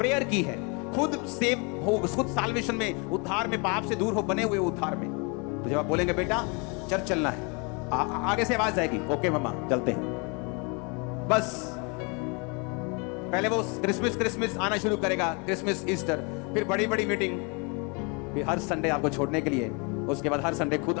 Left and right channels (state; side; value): quieter; right; 32.3 dB